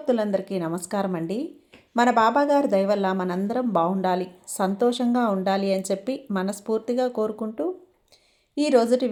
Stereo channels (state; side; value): identical; both; correlation 1.00